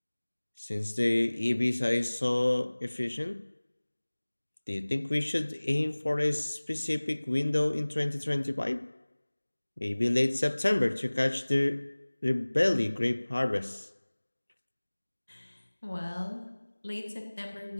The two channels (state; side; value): inverted; both; correlation -1.00